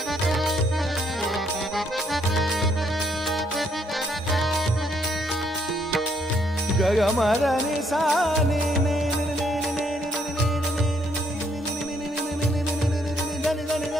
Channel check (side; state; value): both; normal; correlation 0.71